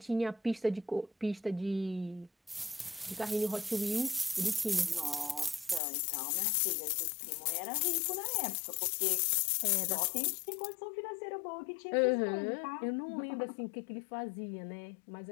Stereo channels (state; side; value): drops out; right; at 5.8 s